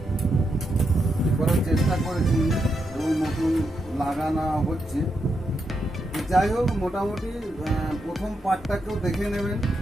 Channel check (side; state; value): both; normal; correlation 0.83